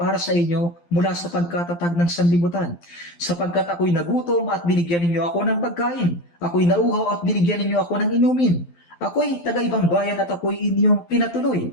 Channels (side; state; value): right; late; 12 ms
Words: sa inyo mula sa pagkatatag ng sanlibutan. Sapagkat ako'y nagutom at binigyan ninyo ako ng pagkain. Ako'y nauhaw at binigyan ninyo ako ng inumin. Ako'y taga-ibang bayan at ako'y inyong